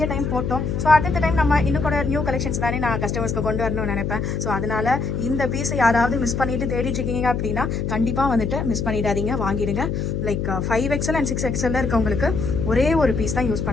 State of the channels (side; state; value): left; noise; hum, 1 dB below the sound